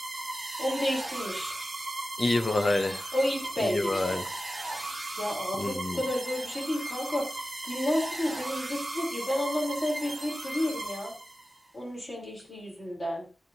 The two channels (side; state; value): both; normal; correlation 0.94